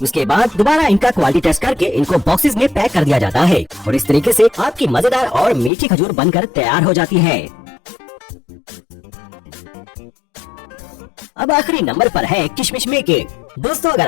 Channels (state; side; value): drops out; right; at 5.7 s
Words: उसके बाद दोबारा इनका क्वालिटी टेस्ट करके इनको बॉक्सेस में पैक कर दिया जाता है और इस तरीके से आपकी मजेदार और मीठी खजूर बनकर तैयार हो जाती है। अब आखिरी नंबर पर है किशमिश मेकिंग। दोस्तों, अगर